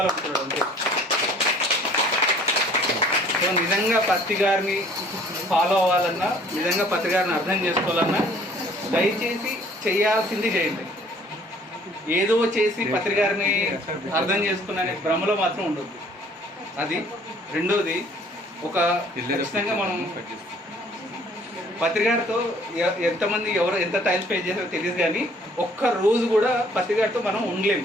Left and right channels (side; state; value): both; normal; correlation 0.56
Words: అంతే. సో నిజంగా పత్రికారిని ఫాలో అవ్వాలన్నా, నిజంగా పత్రికారిని అర్థం చేసుకోవాలన్నా దయచేసి చేయాల్సింది చేయండి. ఏదో చేసి పత్రికారిని అర్థం చేసుకున్న భ్రమలో మాత్రం ఉండదు. అది రెండోది, ఒక ఖచ్చితంగా మనం పత్రికారితో ఎంతమంది ఎంత టైం స్పెండ్ చేస్తారో తెలియదు, కానీ ఒక్క రోజు కూడా పత్రికారితో మనం ఉండలేము.